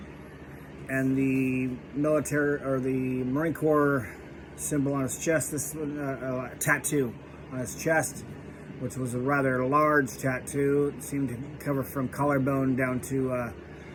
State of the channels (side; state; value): both; identical; correlation 1.00